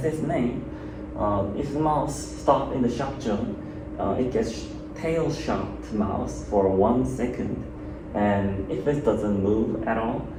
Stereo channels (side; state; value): both; identical; correlation 1.00